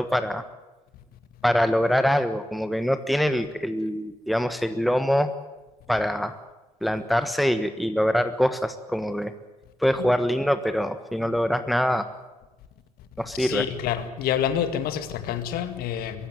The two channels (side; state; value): both; normal; correlation 0.86